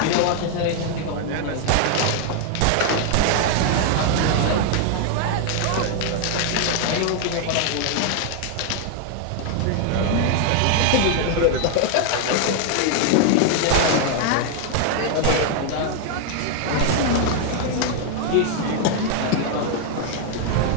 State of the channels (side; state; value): both; different; correlation 0.00